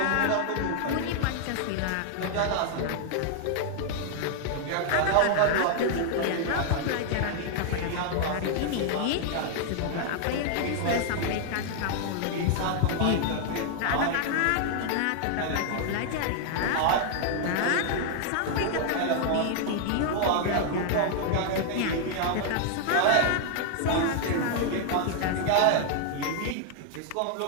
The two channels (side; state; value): both; different; correlation 0.00